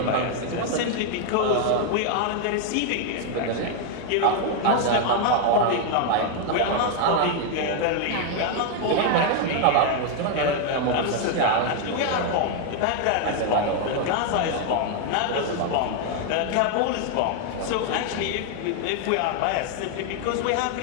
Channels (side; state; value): both; different; correlation 0.00